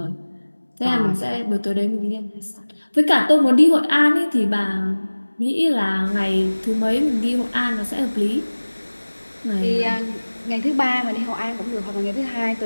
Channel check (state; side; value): inverted; both; correlation -1.00